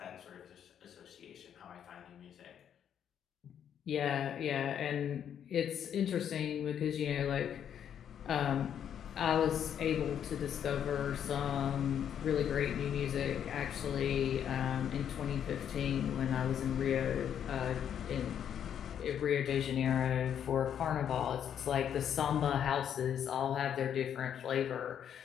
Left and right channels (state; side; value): quieter; right; 9.0 dB